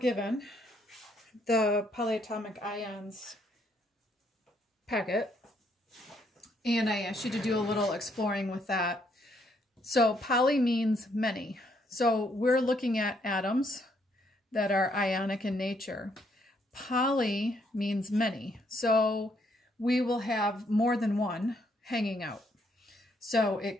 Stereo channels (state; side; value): normal; both; correlation 0.71